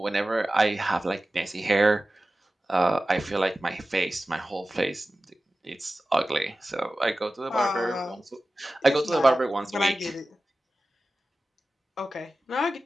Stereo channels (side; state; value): both; normal; correlation 0.95